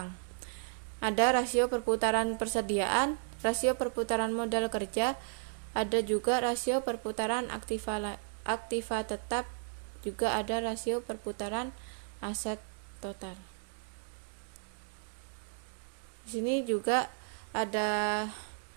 Ada rasio perputaran persediaan, rasio perputaran modal kerja, ada juga rasio perputaran aktiva tetap, juga ada rasio perputaran aset total. Di sini juga ada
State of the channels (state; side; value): silent; left; digital silence